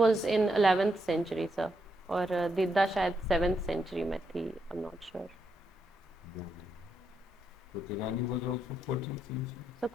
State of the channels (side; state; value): both; normal; correlation 0.80